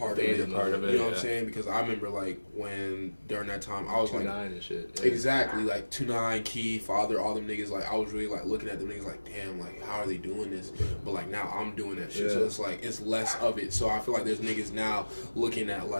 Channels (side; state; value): both; inverted; correlation -1.00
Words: of it. You know what I'm saying? Because I remember like when during that time I was 2-9 like and shit. Yeah. Exactly, like 2-9, Key, Father, all them niggas. Like I was really like looking at them niggas like, damn, like how are they doing this? But like now I'm doing that shit, so it's like it's less of it. So I feel like there's niggas now looking at